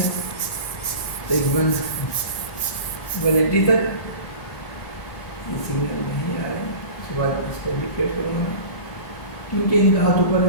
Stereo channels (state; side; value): late; right; 1.7 ms